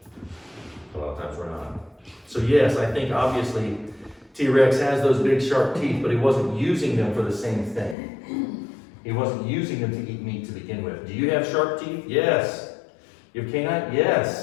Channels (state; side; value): drops out; right; at 8.0 s